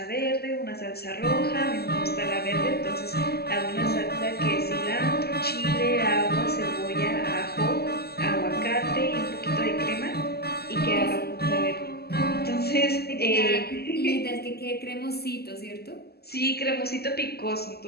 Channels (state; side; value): late; right; 0.46 ms